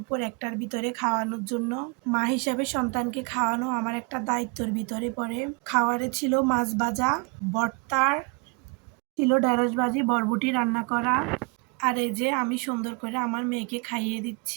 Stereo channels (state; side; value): quieter; left; 30.6 dB